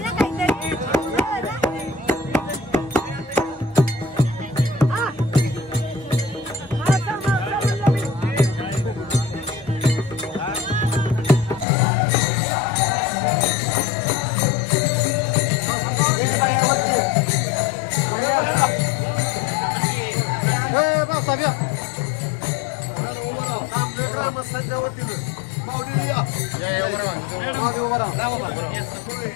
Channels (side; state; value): right; drops out; at 11.7 s